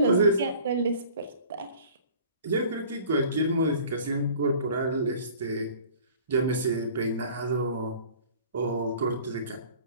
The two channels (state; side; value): inverted; both; correlation -0.47